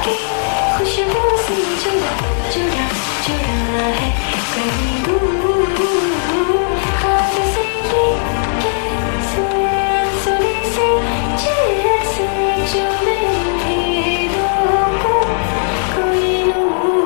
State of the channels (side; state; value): right; silent; digital silence